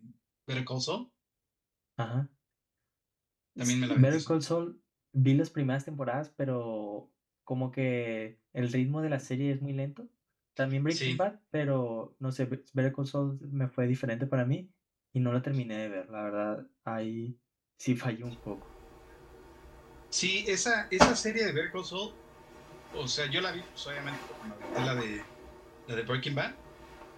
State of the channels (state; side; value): identical; both; correlation 1.00